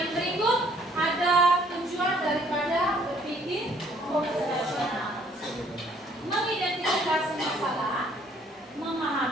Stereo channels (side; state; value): both; normal; correlation 0.61